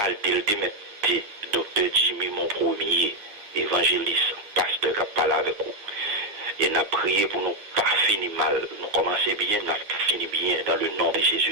le démetté, docteur Jimmy, mon premier évangéliste, pasteur qui a parlé avec vous. Et nous avons prié pour nous pas finir mal, nous commencer bien, nous finir bien dans le nom de Jésus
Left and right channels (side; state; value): left; late; 9.7 ms